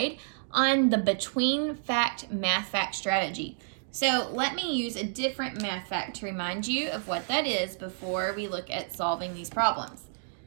on the between fact math fact strategy. So let me use a different math fact to remind you of what that is before we look at solving these problems.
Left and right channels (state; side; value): silent; left; digital silence